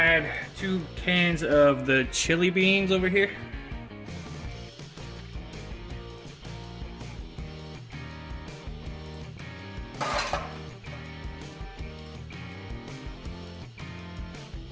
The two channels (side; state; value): both; identical; correlation 1.00